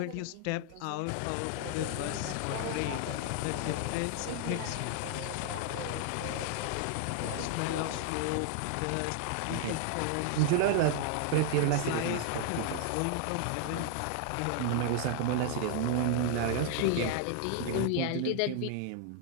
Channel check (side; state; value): both; different; correlation 0.00